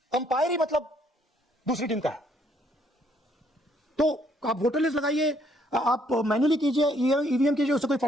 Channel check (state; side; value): normal; both; correlation 0.68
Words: अंपायर ही मतलब दूसरी टीम का है। तो आप वोटर लिस्ट लगाइए, आप मैन्युअली कीजिए, ईवीएम कीजिए, उससे कोई